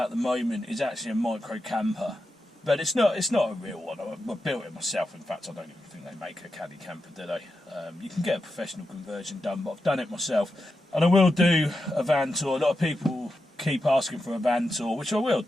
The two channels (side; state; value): both; normal; correlation 0.89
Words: the moment is actually a micro camper, but it's not a real one. I built it myself. In fact, I don't even think they make a caddy camper, do they? You can get a professional conversion done, but I've done it myself, and I will do a van tour. A lot of people keep asking for a van tour, which I will